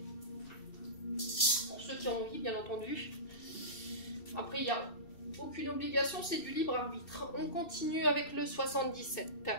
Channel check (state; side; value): late; right; 2.7 ms